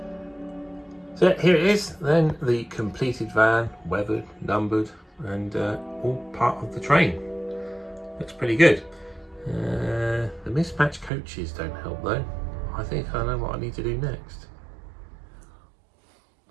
So here it is, then the completed van, weathered, numbered, and all part of the train. Looks pretty good. The mismatched coaches don't help though. I think I know what I need to do next.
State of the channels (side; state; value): left; drops out; at 11.1 s